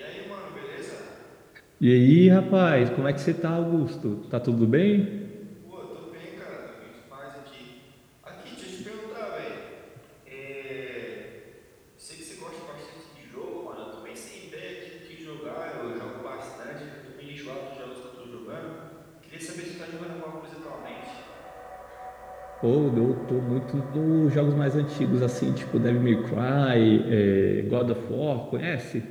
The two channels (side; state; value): both; identical; correlation 1.00